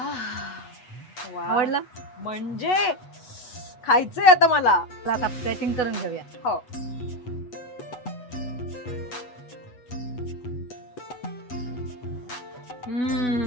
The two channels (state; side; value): late; right; 8.1 ms